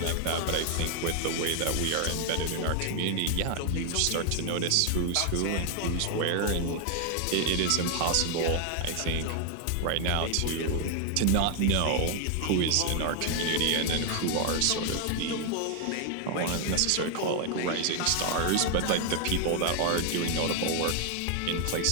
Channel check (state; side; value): different; both; correlation 0.00